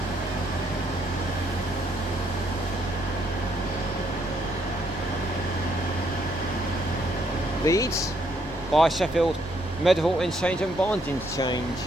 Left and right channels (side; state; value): left; noise; rumble, 15 dB below the sound